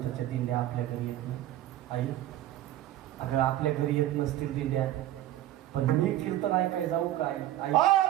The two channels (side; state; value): left; quieter; 13.8 dB